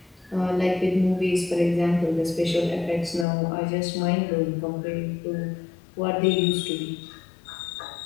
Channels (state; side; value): drops out; right; at 3.2 s